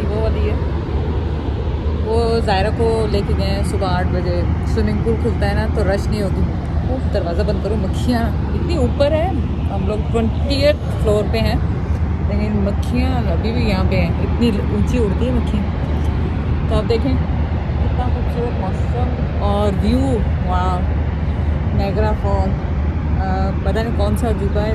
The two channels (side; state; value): both; identical; correlation 1.00